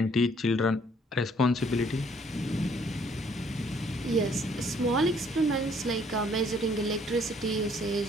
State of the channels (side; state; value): both; normal; correlation 0.63